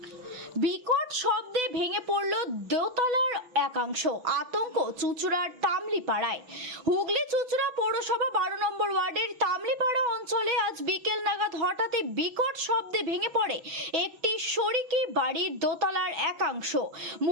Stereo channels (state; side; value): late; left; 6.0 ms